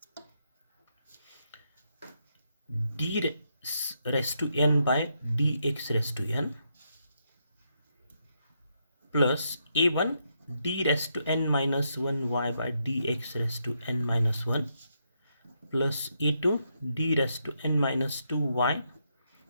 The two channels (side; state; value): both; inverted; correlation -0.79